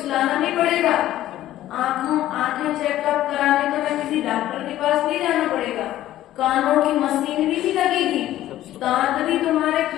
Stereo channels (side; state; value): right; quieter; 13.7 dB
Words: लाना नहीं पड़ेगा। आंखें चेकअप कराने तो मैं किसी डॉक्टर के पास नहीं जाना पड़ेगा। कानों की मशीनरी भी लगेगी, दांत भी तुम्हारे